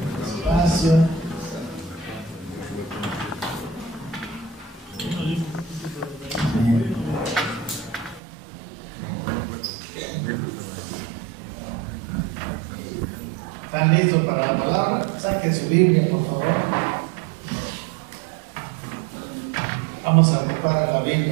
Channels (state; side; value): drops out; left; at 8.2 s